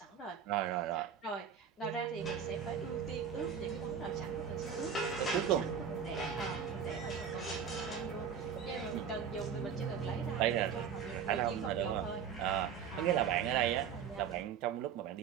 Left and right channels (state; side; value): quieter; left; 7.5 dB